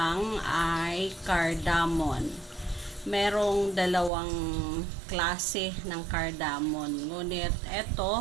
ay cardamom. Merong dalawang klase ng cardamom. Ngunit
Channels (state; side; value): drops out; left; at 4.1 s